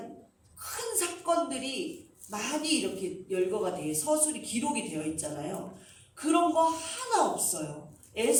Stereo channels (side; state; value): both; identical; correlation 1.00